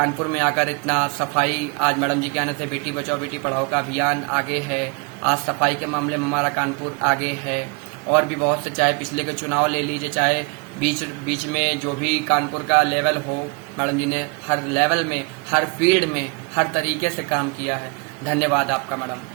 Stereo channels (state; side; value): quieter; left; 32.2 dB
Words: में आकर इतना सफाई, आज मैडम जी के आने से बेटी बचाओ बेटी पढ़ाओ का अभियान आगे है, आज सफाई के मामले में हमारा कानपुर आगे है। और भी बहुत से, चाहे पिछले के चुनाव ले लीजिए, चाहे बीच में जो भी कानपुर का लेवल हो, मैडम जी ने हर लेवल में, हर फील्ड में, हर तरीके से काम किया है। धन्यवाद आपका मैडम,